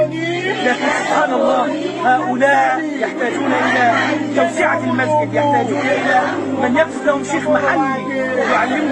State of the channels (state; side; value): identical; both; correlation 1.00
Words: لكن سبحان الله هؤلاء يحتاجون إلى توسعة المسجد، يحتاجون إلى من يكتب لهم شيخ محلي